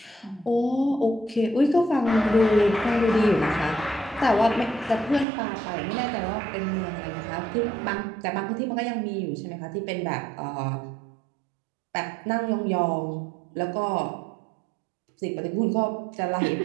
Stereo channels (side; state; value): left; drops out; at 5.2 s